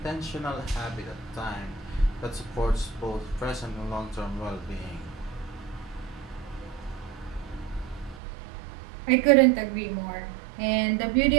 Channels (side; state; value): left; drops out; at 8.2 s